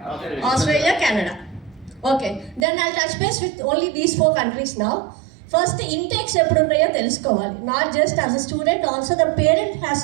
Australia, Canada. Okay, then I'll touch base with only these 4 countries now. First, intakes eppudu unnayo telusukovali. Not just as a student, also the parent has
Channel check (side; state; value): left; drops out; at 2.7 s